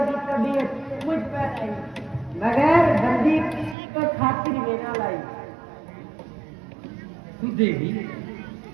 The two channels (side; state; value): left; drops out; at 3.8 s